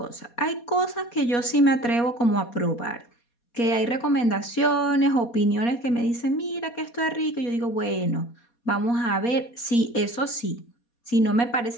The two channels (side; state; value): right; late; 4.2 ms